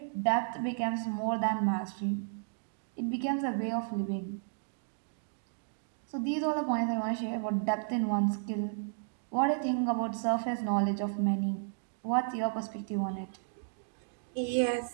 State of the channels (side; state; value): left; silent; digital silence